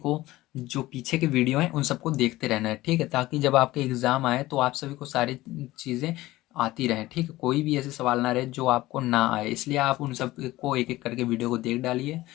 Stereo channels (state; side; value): quieter; right; 17.6 dB